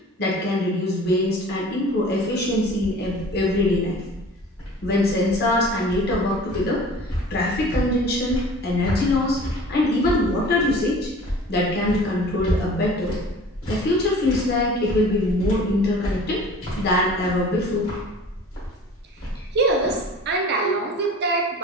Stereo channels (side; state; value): both; normal; correlation 0.44